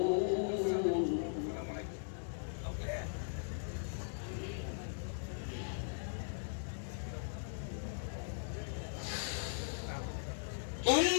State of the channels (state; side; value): silent; right; digital silence